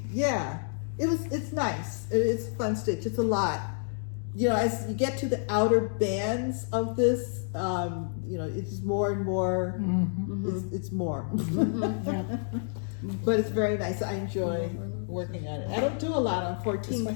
Yeah, it's nice. It's a fun stitch. It's a lot. As you get to the outer bands of this, it's more and more. Mm-hmm. It's more. Yeah. But it's very nice. I enjoy working on it. I don't do a lot on 14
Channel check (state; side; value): silent; right; digital silence